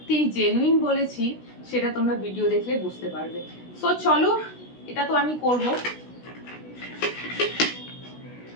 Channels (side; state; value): right; late; 16 ms